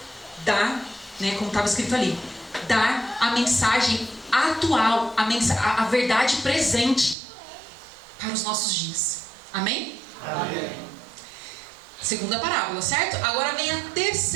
Dar, né, como estava escrito ali, dar a mensagem atual, a verdade presente para os nossos dias. Amém? Amém. Segunda parábola, certo? Agora vem a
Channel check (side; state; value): left; drops out; at 7.2 s